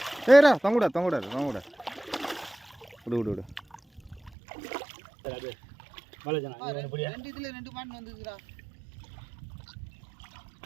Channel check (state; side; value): drops out; left; at 4.3 s